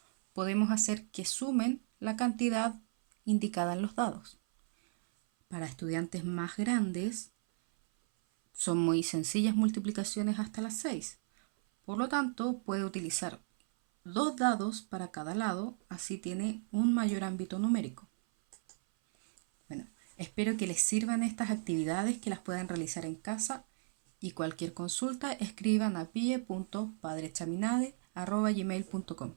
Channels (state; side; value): silent; left; 55 dB below the other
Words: podemos hacer que sumen la cantidad indicada en los dados. Para estudiantes más grandes, son muy sencillas multiplicaciones hasta las 6. Por lo tanto, puede utilizar 2 dados para cada lado, así tiene un mayor ámbito numérico. Bueno, espero que les sirvan estas actividades, que las puedan realizar en casa, y cualquier consulta escriban a pie.padrechaminade@gmail.com.